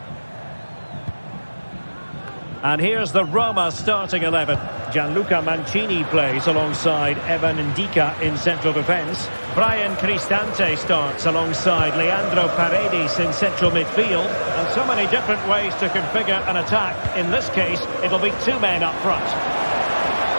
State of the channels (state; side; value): inverted; both; correlation -1.00